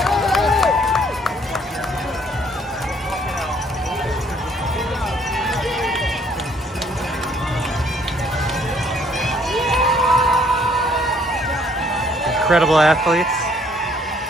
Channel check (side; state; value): both; normal; correlation 0.63